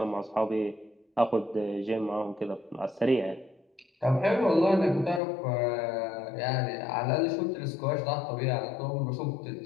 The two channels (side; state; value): right; drops out; at 5.2 s